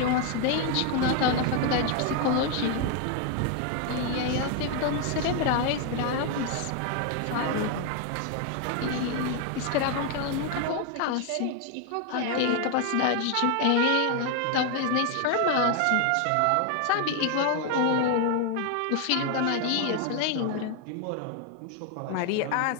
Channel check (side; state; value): both; different; correlation 0.01